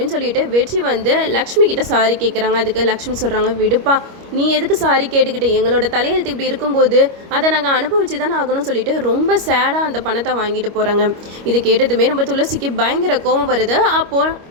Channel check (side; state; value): left; late; 25 ms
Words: சொல்லிட்டு வெற்றி வந்து லக்ஷ்மி கிட்ட சாரி கேட்குறாங்க. அதுக்கு லக்ஷ்மி சொல்கிறாங்க, விடுப்பா, நீ எதுக்கு சாரி கேட்டுக்கிட்டு, எங்களோட தலையெழுத்து இப்படி இருக்கும்போது அதை நாங்கள் அனுபவிச்சு தானே ஆகணும்னு சொல்லிட்டு ரொம்ப சேடாக அந்த பணத்தை வாங்கிட்டு போகிறாங்க. இது கேட்டதுமே நம்ம துளசிக்கு பயங்கர கோபம் வருது. அப்போது